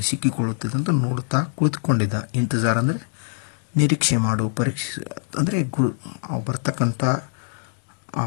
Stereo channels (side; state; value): right; silent; digital silence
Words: ಸಿಕ್ಕಿಕೊಳ್ಳುತ್ತದೆ ಅಂತ ನೋಡ್ತಾ ಕುಳಿತುಕೊಂಡಿದ್ದ। ಇಂತಜಾರ್ ಅಂದರೆ ನಿರೀಕ್ಷೆ ಮಾಡು, ಪರೀಕ್ಷೆ ಅಂದರೆ ಅವು ಬರ್ತಕ್ಕಂಥ